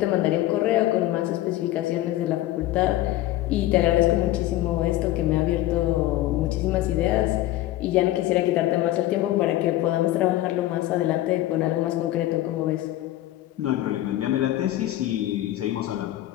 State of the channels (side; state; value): right; quieter; 15.1 dB